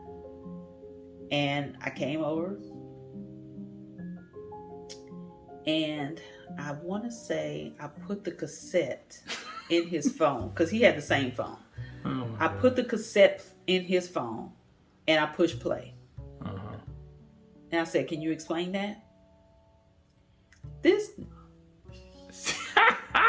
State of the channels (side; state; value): both; identical; correlation 1.00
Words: And I came over. And I want to say I put the cassette in his phone, because he had the same phone. I put the cassette in his phone and I pushed play. And I said, can you explain that? This.